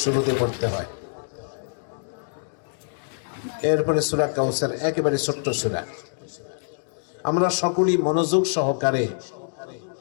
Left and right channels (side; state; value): right; silent; digital silence